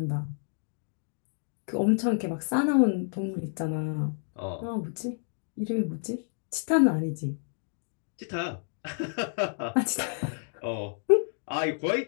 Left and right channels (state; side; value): silent; right; digital silence